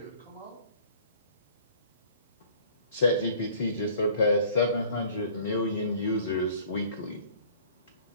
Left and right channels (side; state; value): both; inverted; correlation -0.51